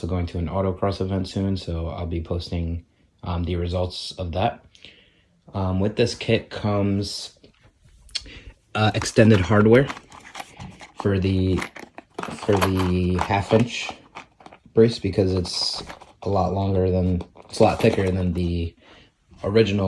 going to an autocross event soon, so I'll be posting the results of that. With this kit comes extended hardware for the 1/2-inch brace, because it's a lot thicker than the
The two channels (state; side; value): identical; both; correlation 1.00